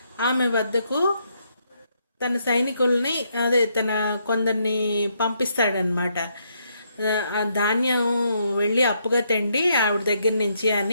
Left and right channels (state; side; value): inverted; both; correlation -0.75